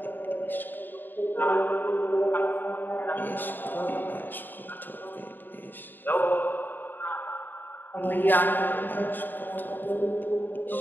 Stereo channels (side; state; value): right; late; 0.092 ms